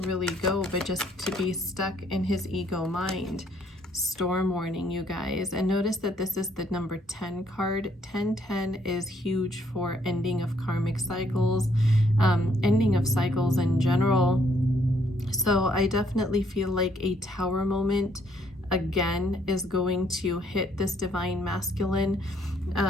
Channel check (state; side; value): normal; both; correlation 0.68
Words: really go but just to be stuck in his ego mind. Storm warning, you guys. And notice that this is the number 10 card. 1010 is huge for ending of karmic cycles, ending of cycles in general. So I definitely feel like a tower moment again is going to hit this divine masculine.